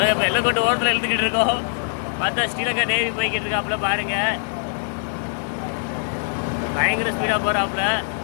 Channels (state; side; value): silent; right; 64 dB below the other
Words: இப்போ எல்லக்கோட்டை ஓரத்தில் எழுத்துக்கிட்டு இருக்கோம். பார்த்தா ஸ்ரீலங்கா நேவி போய்கிட்டு இருக்காப்புல பாருங்க. பயங்கர ஸ்பீடாக போகிறாப்புல.